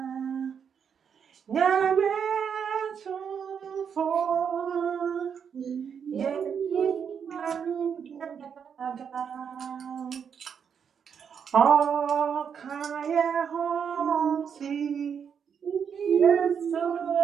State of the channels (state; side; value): quieter; left; 7.3 dB